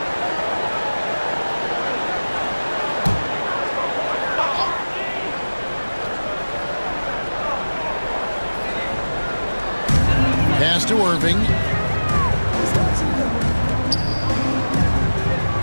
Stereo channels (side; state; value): both; inverted; correlation -1.00